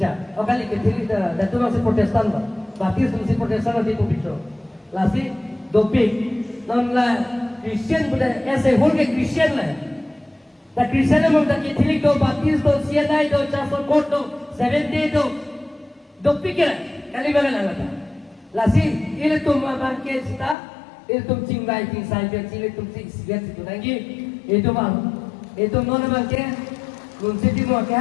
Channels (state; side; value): drops out; right; at 20.6 s